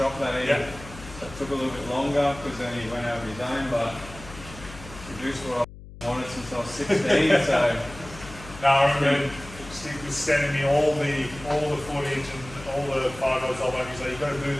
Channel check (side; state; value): left; noise; hum, 16 dB below the sound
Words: that he that took a little bit longer because then he went out of his own, but produced what I wanted since I was 16. So no, I remember Steve was sending me all the footage and all the photos of it. He's like, you've got to do